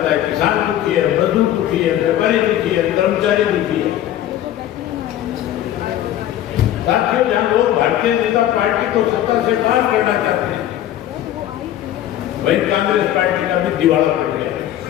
है। किसान दुखी है, मजदूर दुखी है, व्यापारी दुखी है, कर्मचारी दुखी है। साथियों, जहां लोग भारतीय जनता पार्टी को सत्ता से बाहर करना चाहते हैं, वहीं कांग्रेस पार्टी का भी दिवाला पड़ गया।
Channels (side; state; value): right; quieter; 12.2 dB